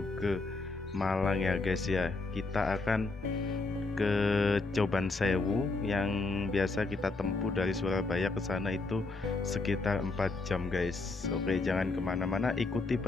ke Malang ya guys ya. Kita akan ke Coban Sewu yang biasa kita tempuh dari Surabaya ke sana itu sekitar 4 jam guys. Oke, jangan kemana-mana, ikuti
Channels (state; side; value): quieter; right; 3.6 dB